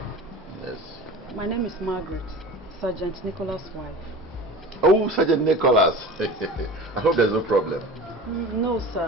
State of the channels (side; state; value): both; normal; correlation 0.36